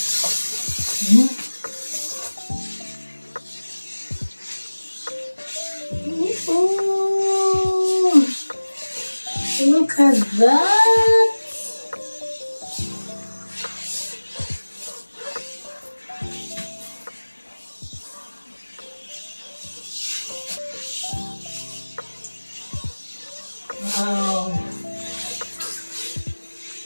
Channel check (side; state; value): both; inverted; correlation -1.00